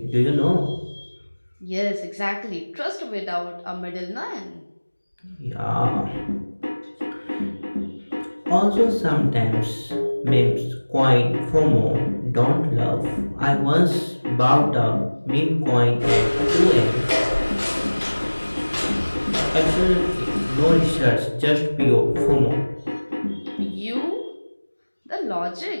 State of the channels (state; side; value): inverted; both; correlation -1.00